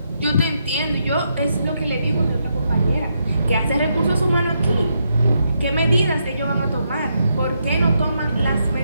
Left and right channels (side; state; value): both; inverted; correlation -0.80